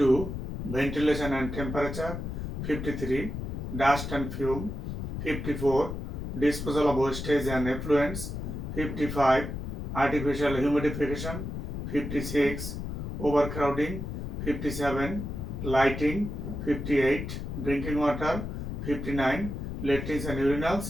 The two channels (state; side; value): noise; left; rumble, 5 dB below the sound